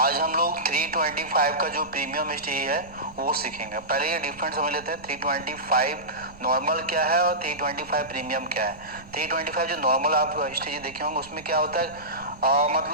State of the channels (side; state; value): right; noise; rumble, 20 dB below the sound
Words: हम लोग 325 का जो प्रीमियम स्टेज है वो सीखेंगे। पहले ये डिफरेंस समझ लेते हैं, 325 नॉर्मल क्या है और 325 प्रीमियम क्या है। 325 जो नॉर्मल आप स्टेज देखे होंगे उसमें क्या होता है,